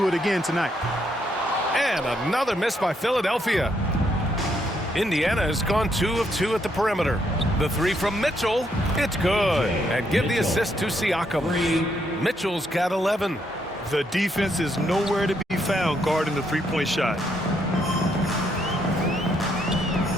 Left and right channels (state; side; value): normal; both; correlation 0.75